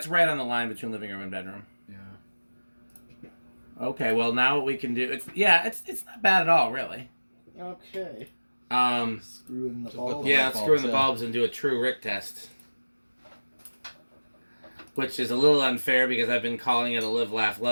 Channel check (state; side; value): inverted; both; correlation -1.00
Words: right on the line between living room and bedroom. Yeah. Okay, well now what we can do it's not bad at all, really. Okay. Screw in the Just put bulb. the Yeah, light let's screw in bulbs the in. bulbs and do a true Rick test. Which is a little unfair because I've been calling it a live, laugh,